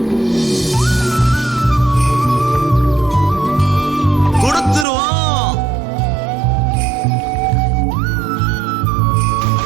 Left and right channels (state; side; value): drops out; left; at 4.9 s